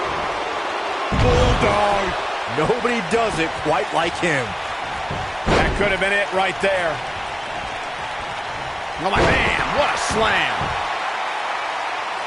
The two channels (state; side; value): identical; both; correlation 1.00